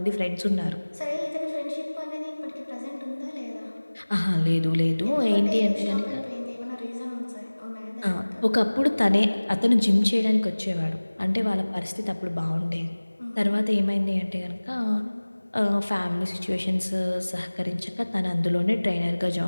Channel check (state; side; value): inverted; both; correlation -1.00